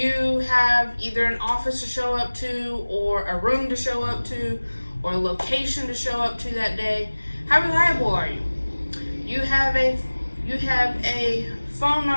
have either an office to show up to, or a room to show up to, or a location to show up to that day. How reliable are you? You have a phone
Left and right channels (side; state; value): both; inverted; correlation -1.00